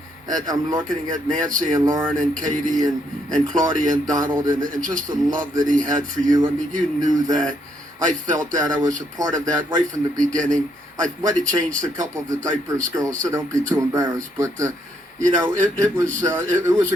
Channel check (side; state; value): both; normal; correlation 0.74